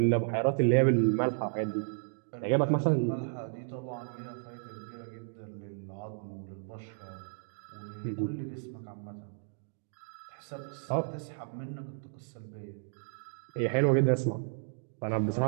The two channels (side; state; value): left; silent; digital silence